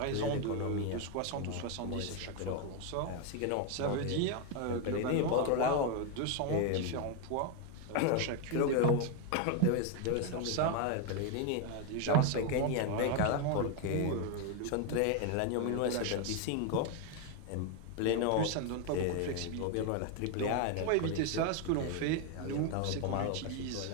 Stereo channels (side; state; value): both; different; correlation 0.01